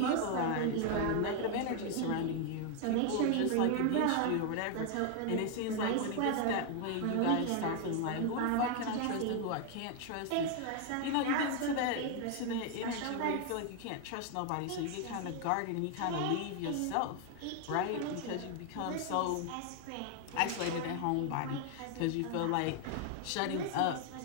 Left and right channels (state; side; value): different; both; correlation 0.00